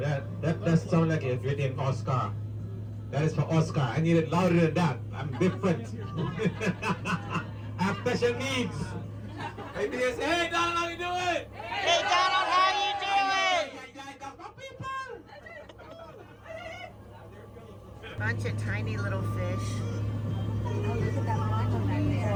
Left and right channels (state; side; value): identical; both; correlation 1.00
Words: sounds like if you're named Oscar. That is for Oscar. I need it louder than that. I'm different. I have special needs. Maybe they say, hey Donald, how you doing? Hey, Donald, how you doing? Bunch of tiny little fish.